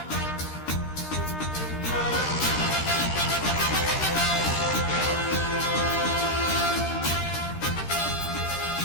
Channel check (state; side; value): late; right; 13 ms